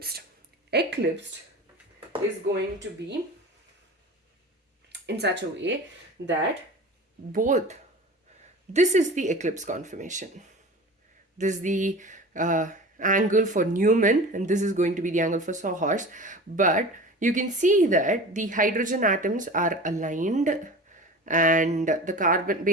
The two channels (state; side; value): normal; both; correlation 0.36